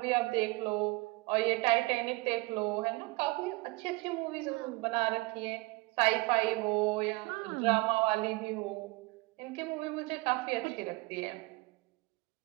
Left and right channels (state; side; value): quieter; left; 24.5 dB